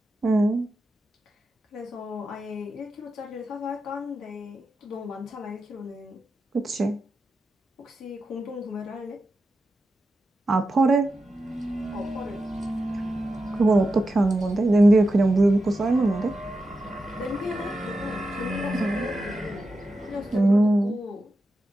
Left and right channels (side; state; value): both; normal; correlation 0.90